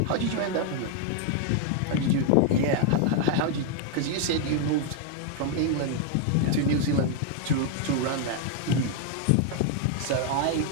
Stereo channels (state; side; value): different; both; correlation 0.00